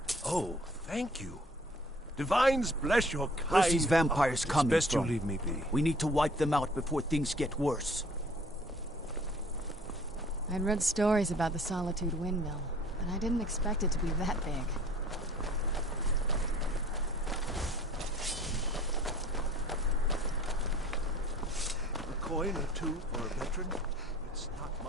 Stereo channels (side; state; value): both; normal; correlation 0.53